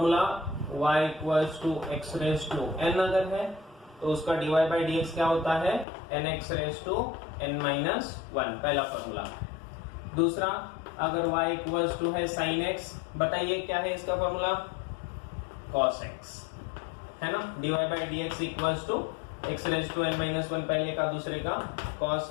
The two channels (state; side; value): drops out; right; at 5.9 s